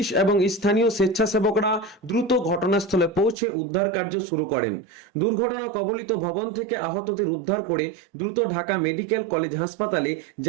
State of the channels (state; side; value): drops out; left; at 3.4 s